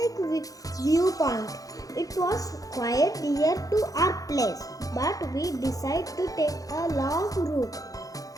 View Point. It was quite near to our place, but we decided to take a long route.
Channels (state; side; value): late; right; 0.17 ms